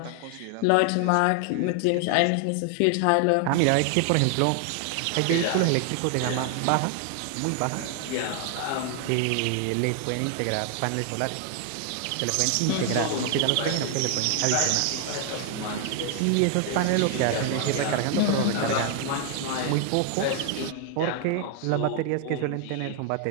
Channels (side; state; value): both; different; correlation 0.00